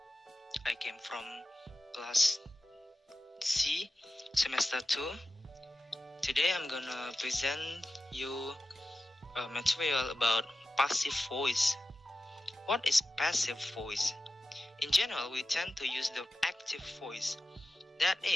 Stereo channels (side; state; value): both; normal; correlation 0.94